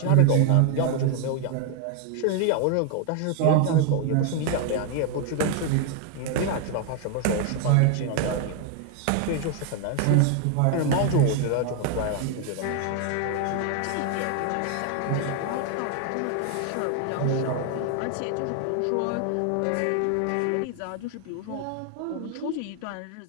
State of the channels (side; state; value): both; different; correlation 0.00